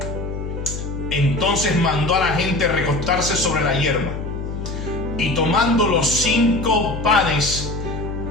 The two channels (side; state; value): left; noise; hum, 6 dB below the sound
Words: Entonces mandó a la gente recostarse sobre la hierba, y tomando los 5 panes